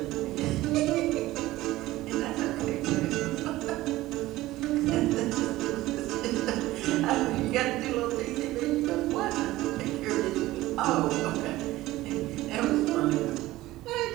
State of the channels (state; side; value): quieter; left; 17.1 dB